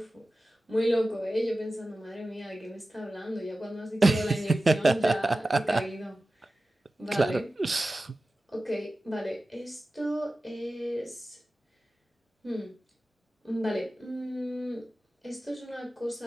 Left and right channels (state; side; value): normal; both; correlation 0.95